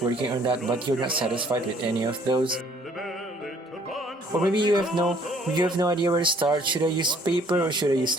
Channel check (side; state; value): both; normal; correlation 0.60